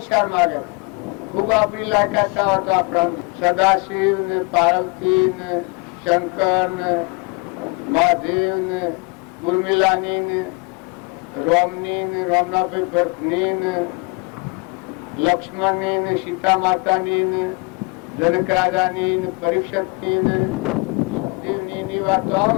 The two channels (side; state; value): right; quieter; 29.2 dB